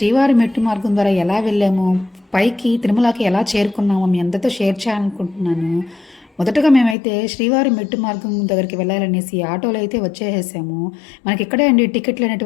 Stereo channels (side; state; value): right; drops out; at 7.0 s